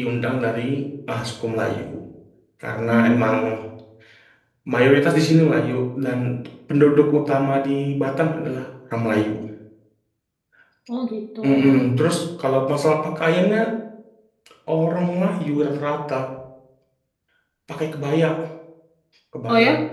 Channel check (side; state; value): both; identical; correlation 1.00